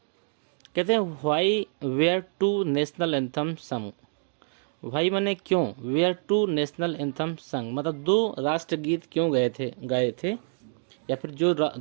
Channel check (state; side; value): silent; left; 60 dB below the other